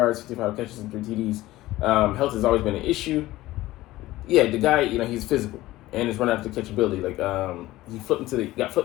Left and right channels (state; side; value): quieter; right; 16.9 dB